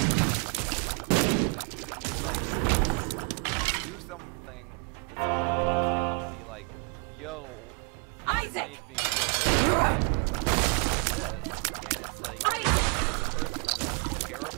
That's definitely true. It's like if you do something that someone comes to you and be like, yo, this made me feel this way when you did this, and it's like, and it's a person you like care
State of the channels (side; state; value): left; quieter; 38.1 dB